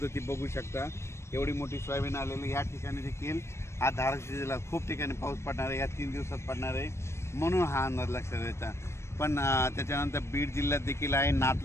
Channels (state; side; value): late; right; 0.13 ms